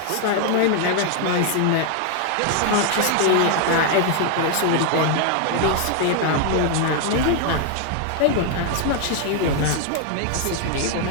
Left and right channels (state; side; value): different; both; correlation 0.00